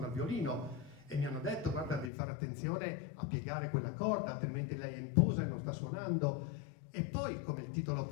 il violino, e mi hanno detto: guarda, devi fare attenzione a piegare quella corda, altrimenti lei è in posa e non sta suonando. E poi, come il titolo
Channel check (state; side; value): drops out; right; at 2.1 s